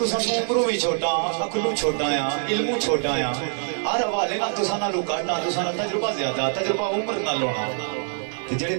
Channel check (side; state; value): left; silent; digital silence